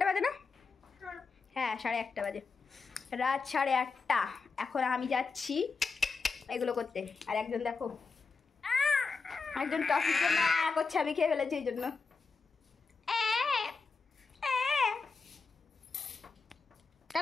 বাজে না? হ্যাঁ, 1:30 বাজে, রাত 8:30। এখন আমি যাচ্ছি এগুলো করতে। আর একজন দেখো, একজন টফির জন্য করছে, আমি খেয়ে ফেলেছি এই জন্য।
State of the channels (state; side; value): quieter; right; 4.6 dB